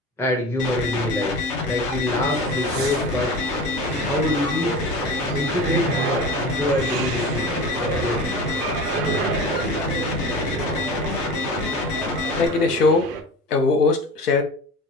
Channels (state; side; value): normal; both; correlation 0.34